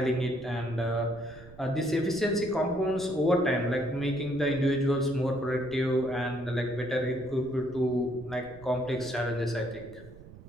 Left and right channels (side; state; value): right; noise; rumble, 19 dB below the sound